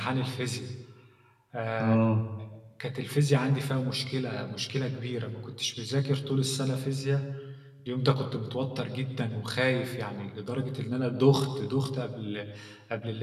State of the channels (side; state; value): both; identical; correlation 1.00